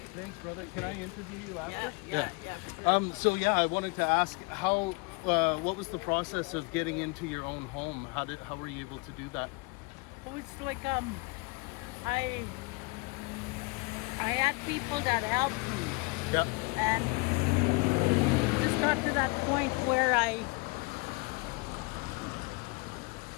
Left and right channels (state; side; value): quieter; right; 27.9 dB